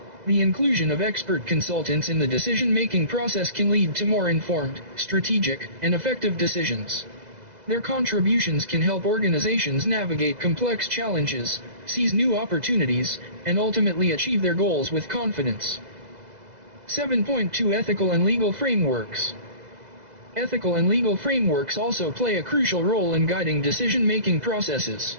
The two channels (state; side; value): late; left; 2.0 ms